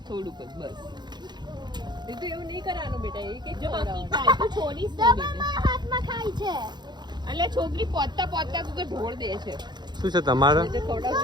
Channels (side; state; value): left; late; 0.21 ms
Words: થોડુંક જ બસ એ તો એવું નહીં કરવાનું બેટા એક એક છોડીશ હાથમાં ખાય છે એટલે છોકરી પોતા પોતા તું તો ઢોળ દે છે શું છે તમારે